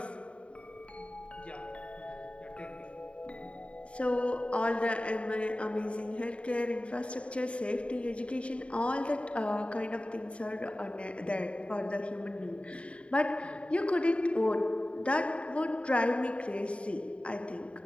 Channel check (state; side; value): late; right; 0.061 ms